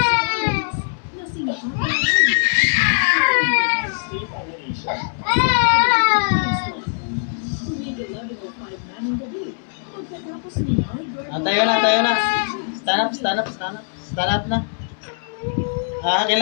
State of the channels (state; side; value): silent; right; 65 dB below the other